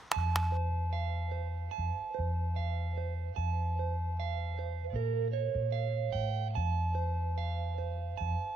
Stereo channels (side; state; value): both; normal; correlation 0.83